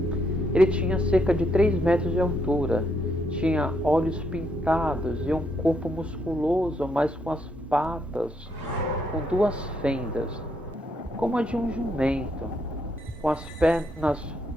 Ele tinha cerca de 3 metros de altura, tinha olhos pintados e um corpo musculoso, mas com as patas com 2 fendas, como a de um jumento, com as pernas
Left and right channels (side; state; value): both; normal; correlation 0.76